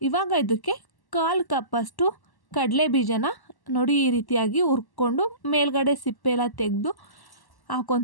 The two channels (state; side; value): late; right; 1.1 ms